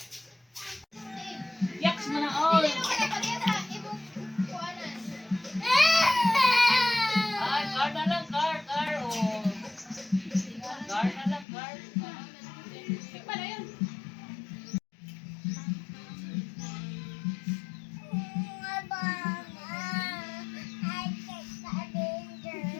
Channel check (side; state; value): right; drops out; at 11.5 s